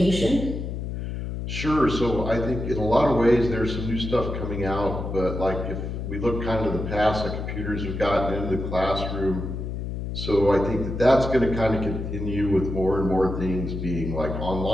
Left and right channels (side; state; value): left; noise; hum, 5 dB below the sound